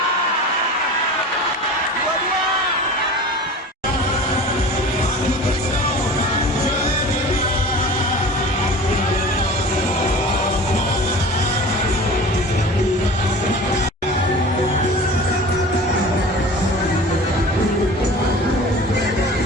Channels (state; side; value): normal; both; correlation 0.38